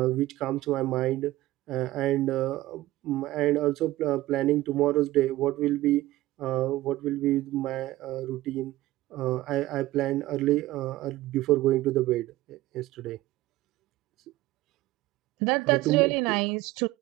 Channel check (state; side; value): quieter; left; 16.8 dB